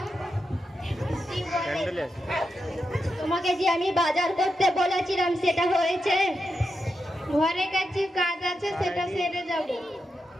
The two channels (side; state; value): both; normal; correlation 0.87